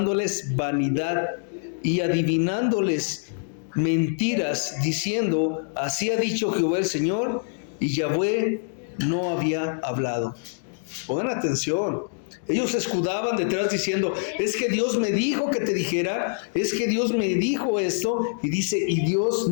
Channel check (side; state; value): right; silent; digital silence